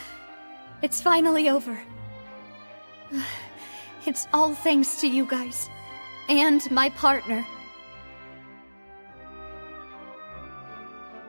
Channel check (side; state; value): both; inverted; correlation -1.00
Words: It's finally over. It's all thanks to you guys. And my partner.